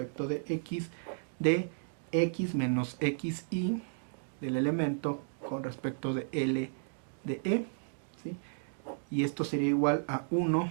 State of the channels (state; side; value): silent; left; digital silence